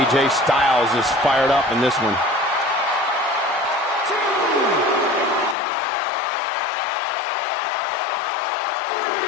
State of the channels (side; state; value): right; drops out; at 5.6 s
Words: Styles is fired up in this one.